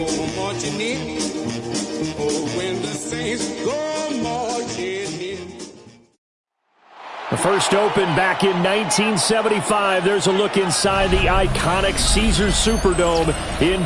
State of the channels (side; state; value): both; identical; correlation 1.00